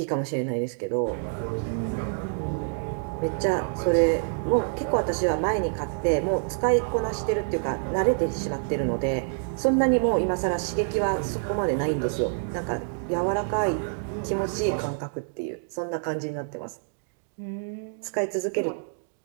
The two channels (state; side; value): silent; left; digital silence